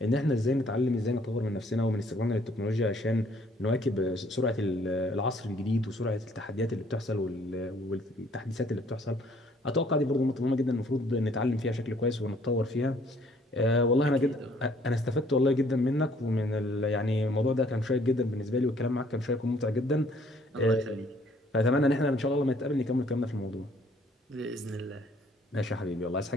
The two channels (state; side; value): normal; both; correlation 0.61